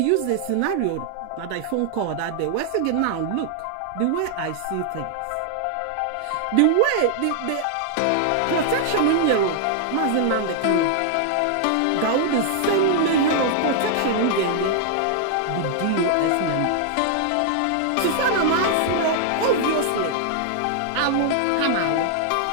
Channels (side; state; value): both; different; correlation 0.00